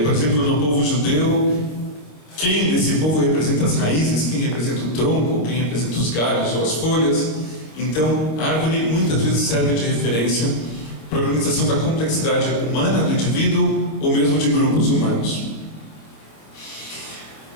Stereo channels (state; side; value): late; right; 26 ms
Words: exemplo, no povo judeu, quem desse povo representa as raízes, quem representa o tronco, quem representa os galhos ou as folhas. Então, a árvore muitas vezes serve de referência para a organização da complexidade humana do indivíduo ou mesmo de grupos humanos.